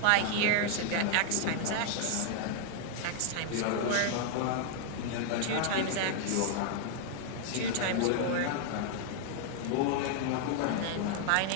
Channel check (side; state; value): both; different; correlation 0.00